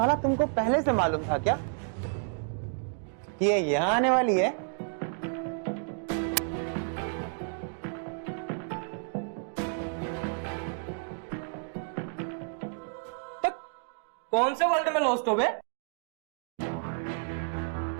तुमको पहले से मालूम था क्या कि ये यहाँ आने वाली है? कौन से वर्ल्ड में लॉस्ट हो बे?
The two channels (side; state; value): left; silent; 57 dB below the other